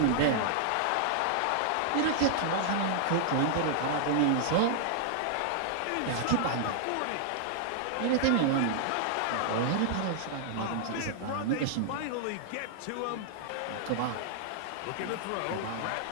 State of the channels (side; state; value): both; different; correlation -0.01